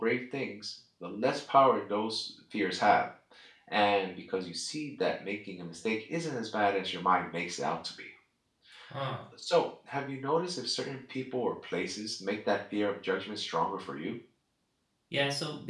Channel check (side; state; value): both; identical; correlation 1.00